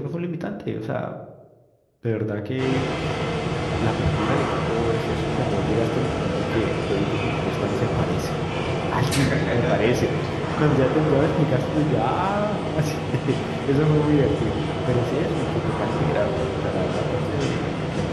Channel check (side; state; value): both; identical; correlation 1.00